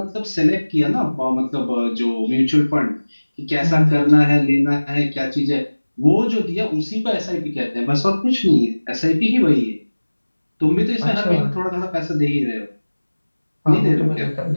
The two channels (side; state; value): both; inverted; correlation -1.00